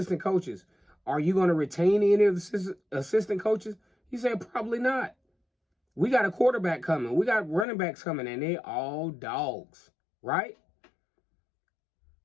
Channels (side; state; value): right; drops out; at 7.7 s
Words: coaches? Are you going to retain any of the assistant coaches? He said, probably not. We got a quarterback coming. We got running backs coming, and they all dogs, right?